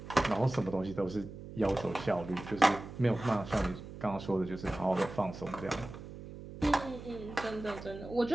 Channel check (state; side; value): noise; right; hum, 13 dB below the sound